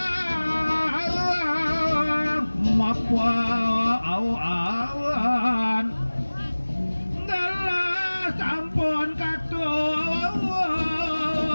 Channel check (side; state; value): both; inverted; correlation -1.00